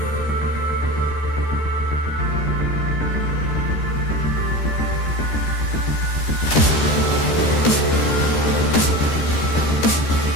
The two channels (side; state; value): right; late; 13 ms